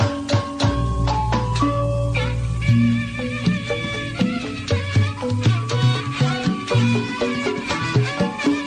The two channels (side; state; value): both; identical; correlation 1.00